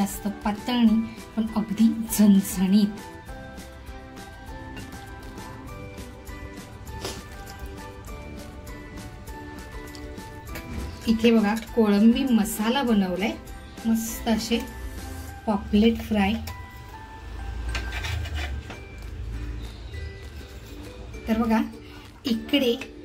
पातळ नाही, पण अगदी झणझणीत। इथे बघा कोळंबी मसाला बनवलाय, मस्त असे पॉपलेट फ्राय। तर बघा इकडे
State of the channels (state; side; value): identical; both; correlation 1.00